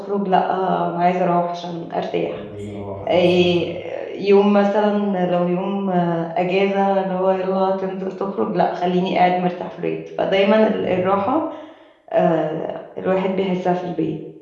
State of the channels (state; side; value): identical; both; correlation 1.00